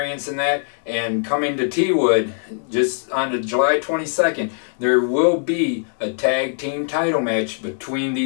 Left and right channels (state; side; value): silent; right; digital silence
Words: in that, and coming to T-Wood just on the July 22nd, there will be a tag team title match between